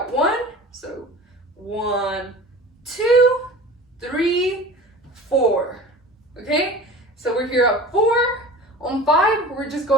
1, so 1, 2, 3, 4. Okay? So we're here at 4. On 5, we're just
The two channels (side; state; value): both; normal; correlation 0.38